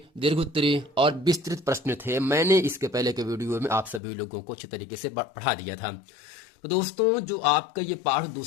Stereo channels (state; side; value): drops out; right; at 4.0 s